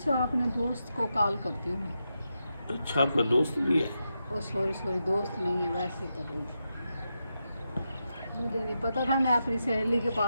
अपने दोस्त को कॉल करती हूँ मैं। अच्छा आपका दोस्त भी है? ओ सॉरी सॉरी, दोस्त नहीं है, वैसे कर रही थी। मुझे नहीं पता था मैं अपनी सहेली के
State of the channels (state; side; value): inverted; both; correlation -0.87